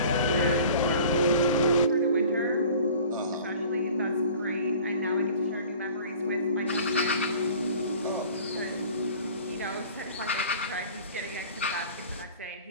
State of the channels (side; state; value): both; inverted; correlation -0.45